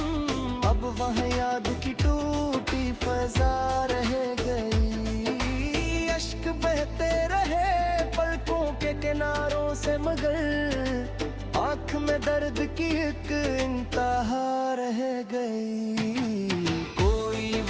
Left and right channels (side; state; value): both; identical; correlation 1.00